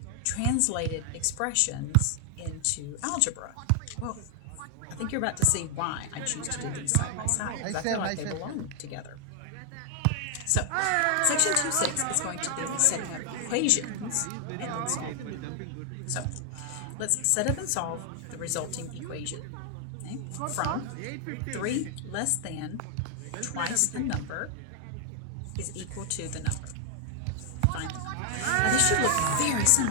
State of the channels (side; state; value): both; different; correlation 0.00